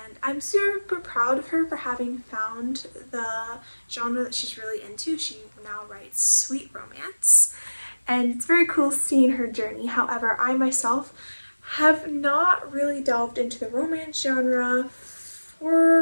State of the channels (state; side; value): inverted; both; correlation -1.00